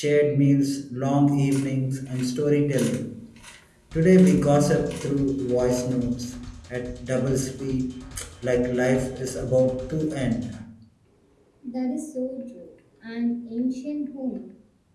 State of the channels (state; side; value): identical; both; correlation 1.00